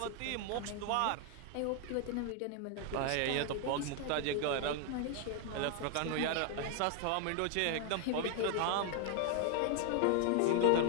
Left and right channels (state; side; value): different; both; correlation 0.00